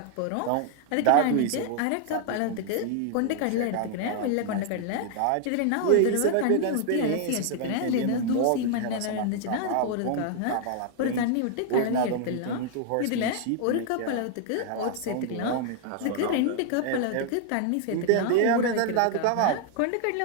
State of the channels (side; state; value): both; different; correlation 0.00